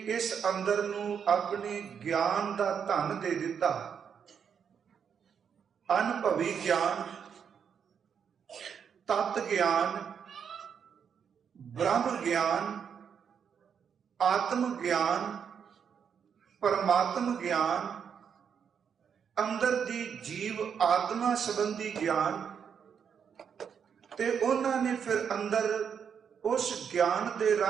ਇਸ ਅੰਦਰ ਨੂੰ ਆਪਣੇ ਗਿਆਨ ਦਾ ਧਨ ਦੇ ਦਿੱਤਾ, ਅਨੁਭਵੀ ਗਿਆਨ, ਤਤ ਗਿਆਨ, ਬ੍ਰਹਮ ਗਿਆਨ, ਆਤਮ ਗਿਆਨ, ਪਰਮਾਤਮ ਗਿਆਨ, ਅੰਦਰ ਦੀ ਜੀਵ ਆਤਮਾ ਸੰਬੰਧੀ ਗਿਆਨ, ਤੇ ਉਹਨਾਂ ਨੇ ਫਿਰ ਅੰਦਰ ਉਸ ਗਿਆਨ ਦੇ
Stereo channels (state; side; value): quieter; left; 7.3 dB